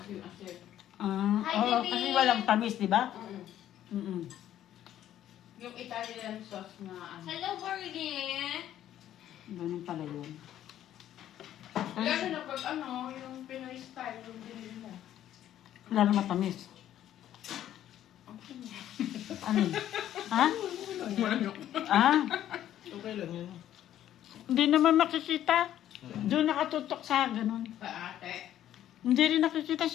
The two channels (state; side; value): quieter; right; 11.7 dB